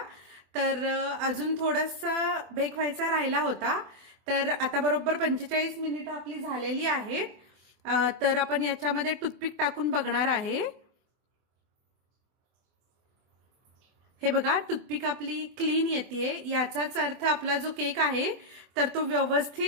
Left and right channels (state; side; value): late; left; 24 ms